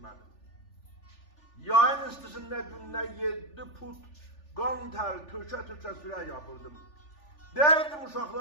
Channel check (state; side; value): late; right; 3.4 ms